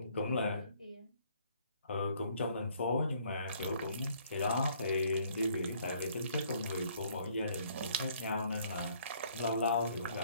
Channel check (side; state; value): both; inverted; correlation -0.63